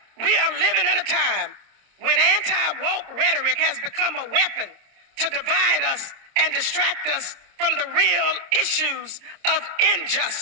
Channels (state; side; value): late; left; 26 ms